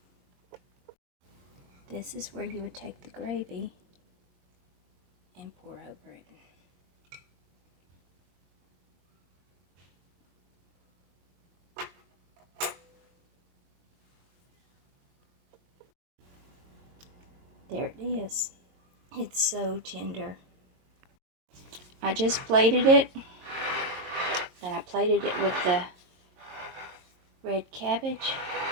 this is where you would take the gravy and pour over it. There it is. It's so tender. I just plated it, and I plated it with the red cabbage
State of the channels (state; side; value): late; left; 22 ms